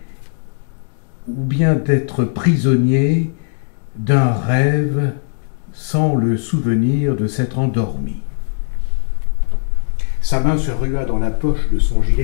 ou bien d'être prisonnier d'un rêve sans le souvenir de s'être endormi. Sa main se rua dans la poche de son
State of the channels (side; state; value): right; silent; digital silence